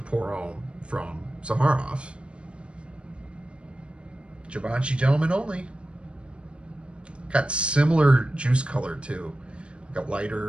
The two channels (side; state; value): left; late; 0.058 ms